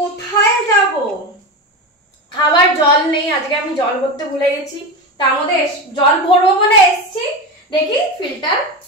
যাব? খাবার জল নেই, আজকে আমি জল ভরতে ভুলে গেছি। তার মধ্যে জল ভরবো বলে এসছি, দেখি ফিল্টার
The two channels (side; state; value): both; normal; correlation 0.20